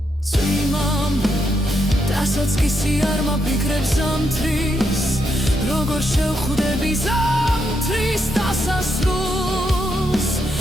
წვიმამ დასაწყისი არ მაფიქრებს ზამთრის როგორ შევხვდები ზამთრის დასასრულს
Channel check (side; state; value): both; normal; correlation 0.80